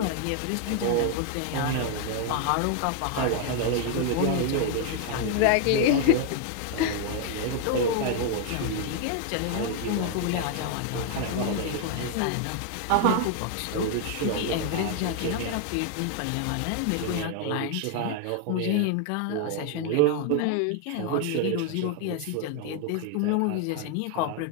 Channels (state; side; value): different; both; correlation 0.00